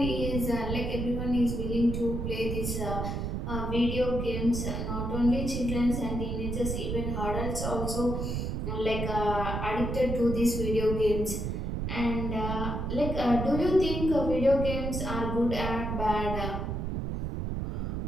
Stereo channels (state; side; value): noise; right; rumble, 2 dB below the sound